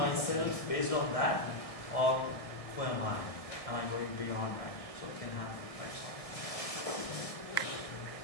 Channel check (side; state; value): right; late; 1.7 ms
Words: based on that? Or who am I? Am I going beyond that? So we can have lights on.